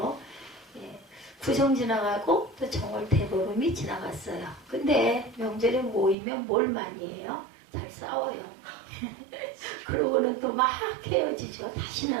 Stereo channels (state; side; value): drops out; left; at 6.2 s